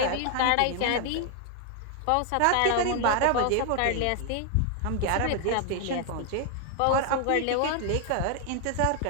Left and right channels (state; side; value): different; both; correlation 0.00